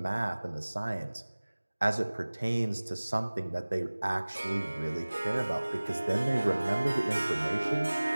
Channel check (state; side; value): inverted; both; correlation -1.00